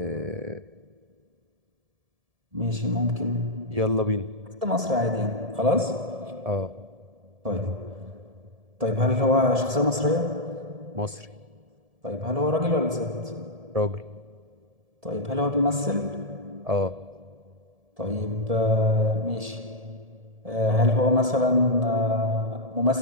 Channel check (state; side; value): late; left; 1.7 ms